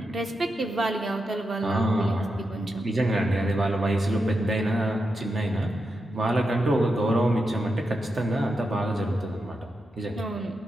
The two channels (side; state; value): both; normal; correlation 0.87